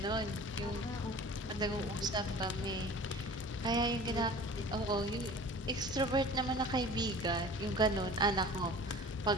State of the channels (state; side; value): normal; both; correlation 0.42